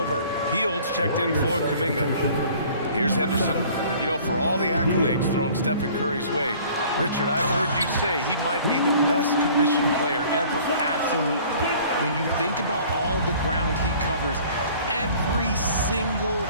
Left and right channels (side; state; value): both; inverted; correlation -0.51